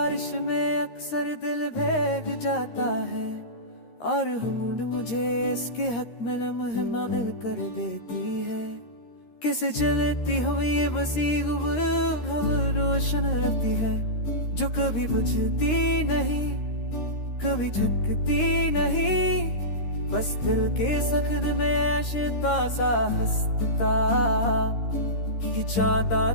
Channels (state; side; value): late; right; 13 ms